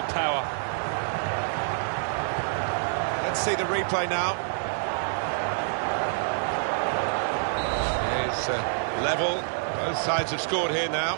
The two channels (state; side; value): silent; left; digital silence